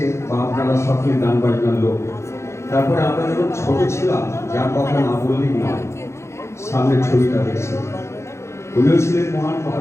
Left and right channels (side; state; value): right; late; 0.13 ms